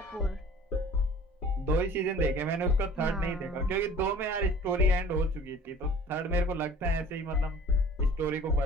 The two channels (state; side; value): normal; both; correlation 0.48